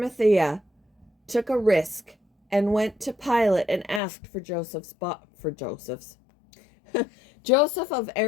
took a risk and went to Pilate and asked for Joseph's. Joseph of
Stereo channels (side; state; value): right; drops out; at 4.0 s